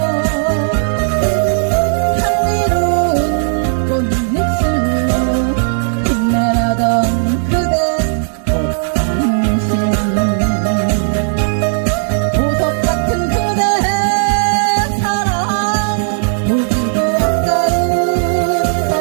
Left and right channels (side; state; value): left; silent; digital silence